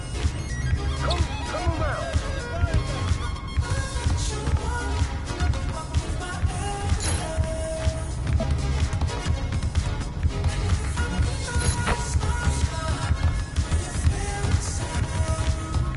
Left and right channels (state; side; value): identical; both; correlation 1.00